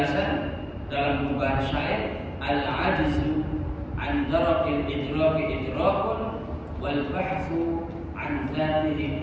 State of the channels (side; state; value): both; identical; correlation 1.00